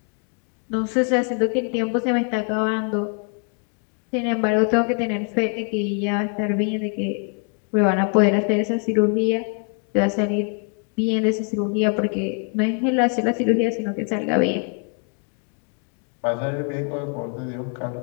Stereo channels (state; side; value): quieter; right; 39.5 dB